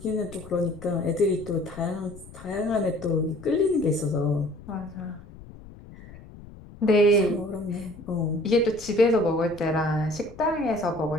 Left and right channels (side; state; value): left; noise; rumble, 18 dB below the sound